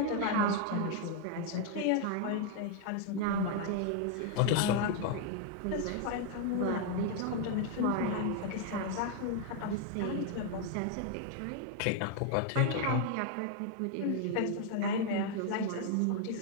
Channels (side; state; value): both; different; correlation 0.00